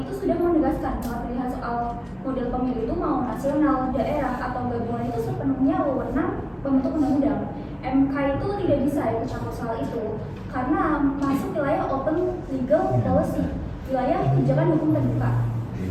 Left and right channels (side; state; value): both; identical; correlation 1.00